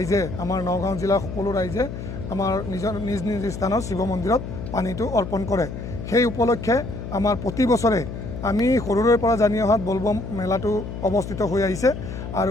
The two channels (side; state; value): left; noise; hum, 8 dB below the sound